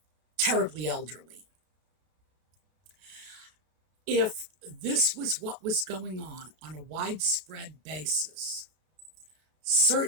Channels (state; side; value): late; left; 33 ms